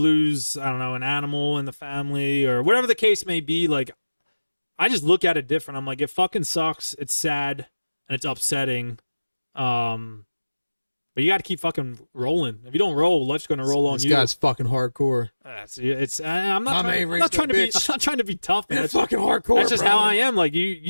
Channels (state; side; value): inverted; both; correlation -1.00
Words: I don't know, an animal in the family or whatever the case may be, like I just look at it different. I'm like, it fucking sucks. It's sad and it's upsetting. But you got to keep fucking rolling. If you don't roll, life's going to roll on you. This guy's fucking hardcore. I'm not trying to be tough, man. It's fucking hardcore. That's just how I am. Like